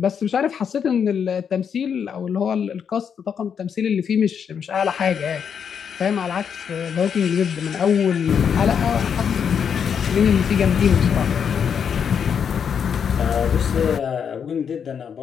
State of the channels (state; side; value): quieter; right; 7.4 dB